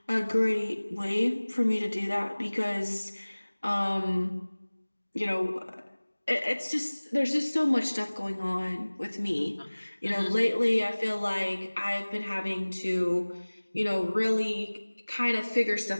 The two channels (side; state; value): both; inverted; correlation -1.00